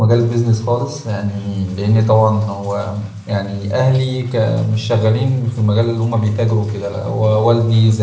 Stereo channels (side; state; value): both; identical; correlation 1.00